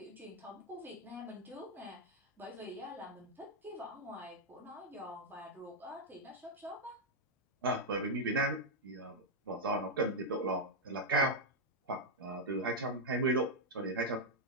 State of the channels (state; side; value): normal; both; correlation -0.01